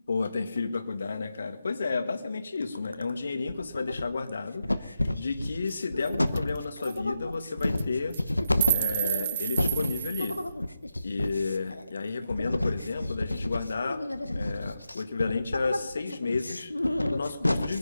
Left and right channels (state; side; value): inverted; both; correlation -0.88